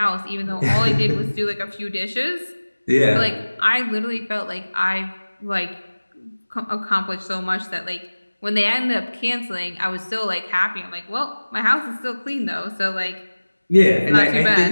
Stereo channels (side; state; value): both; inverted; correlation -1.00